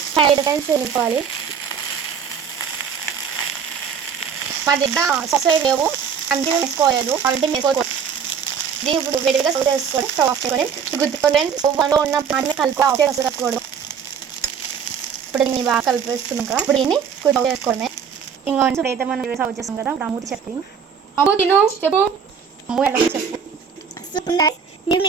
5 టైమ్స్ వెళ్ళిపోవాలి. మా దగ్గర సాస్ లేవు, అందుకే వేసుకోలేదు. ఆల్రెడీ వేసుకోకూడదు. దీన్ని ఇప్పుడు విడిగా సర్వ్ చేసుకొని స్టవ్ ఆఫ్ చేసుకొని గుర్తుకొని స్టవ్లో ఉన్న పాటని కలుపుకోకూడదు. ఇప్పుడు దీన్ని బాగా కలిపేస్తున్నాం కదా, ఇప్పుడు దీన్ని సర్వ్ చేసుకోవడమే. ఇంకా అయితే మనం సర్వ్ చేస్తాం కదా. ఇప్పుడు అమ్ముతి చెప్పి చెప్పు అమ్ము ఎలా చెప్పు.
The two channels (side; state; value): left; quieter; 7.0 dB